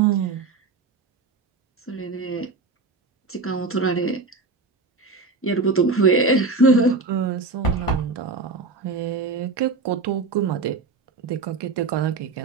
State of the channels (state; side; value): quieter; left; 4.0 dB